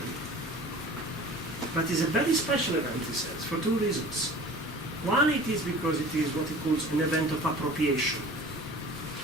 But it's a very special event, he says, for two reasons. One, it is because it is what he calls an event of appropriation.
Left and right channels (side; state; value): both; normal; correlation 0.43